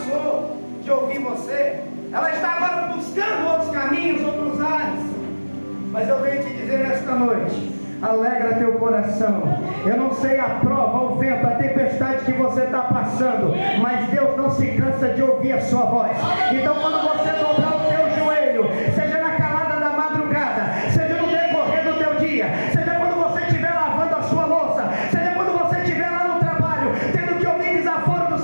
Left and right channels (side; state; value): both; inverted; correlation -1.00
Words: de ouvir você. Ela está agora buscando outros caminhos, outros ares. Mas eu venho te dizer nesta noite: alegra teu coração. Eu não sei a prova, o vento, a tempestade que você está passando, mas Deus não se cansa de ouvir a sua voz. Então quando você dobrar o teu joelho, seja na calada da madrugada, seja no decorrer do teu dia, seja quando você estiver lavando a sua louça, seja quando você estiver lá no trabalho, tendo que ouvir desaforo do